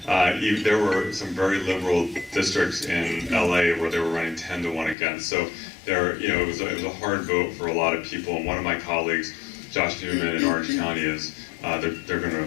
There were some very liberal districts in LA where they were running 10-to-1 against. So it was a hard vote for a lot of people. And one of my colleagues, Josh Newman in Orange County, is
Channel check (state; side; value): drops out; right; at 5.0 s